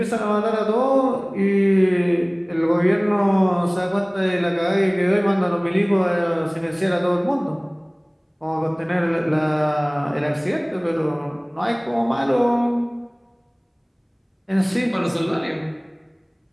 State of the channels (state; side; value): identical; both; correlation 1.00